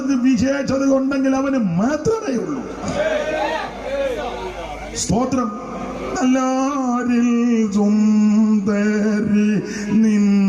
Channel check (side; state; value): both; identical; correlation 1.00